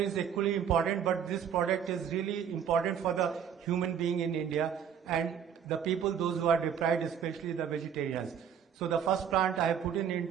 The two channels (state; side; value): quieter; left; 8.2 dB